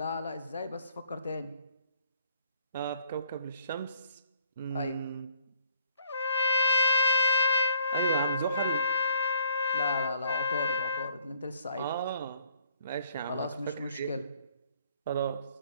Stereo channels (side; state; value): both; inverted; correlation -0.65